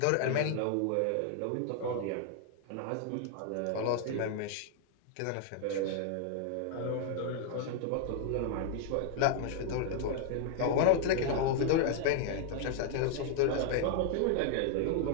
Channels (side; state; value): both; different; correlation 0.00